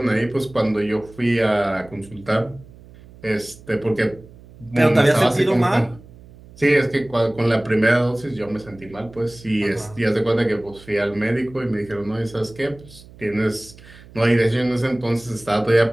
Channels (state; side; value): noise; right; hum, 22 dB below the sound